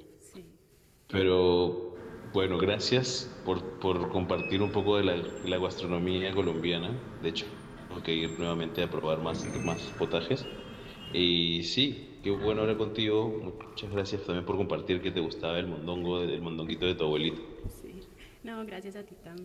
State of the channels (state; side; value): identical; both; correlation 1.00